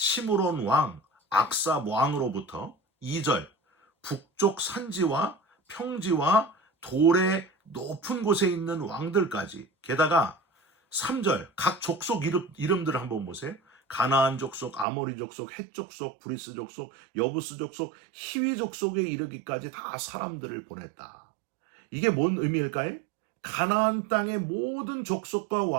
왕, 악삽 왕으로부터 2절 북쪽 산지와 평지와 돌의 높은 곳에 있는 왕들까지, 게다가 3절 각 족속 이름들을 한번 보세요. 가나안 족속, 아모리 족속, 헷 족속, 브리스 족속, 여부스 족속, 히위 족속에 이르기까지 다 사람들을 보냈다. 이게 뭔 의미일까요? 가나안 땅의 모든 족속과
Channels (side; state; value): left; drops out; at 14.9 s